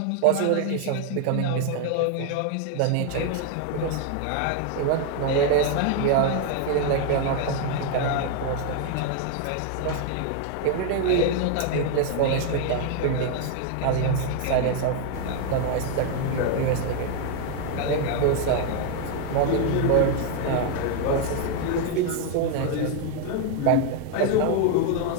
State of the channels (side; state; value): both; different; correlation 0.00